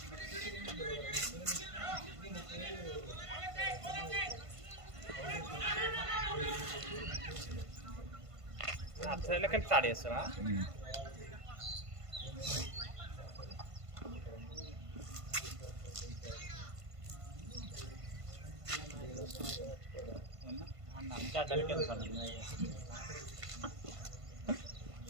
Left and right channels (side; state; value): left; late; 1.5 ms